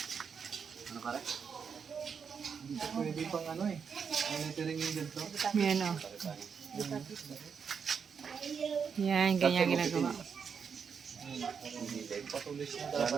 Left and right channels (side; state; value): left; quieter; 6.5 dB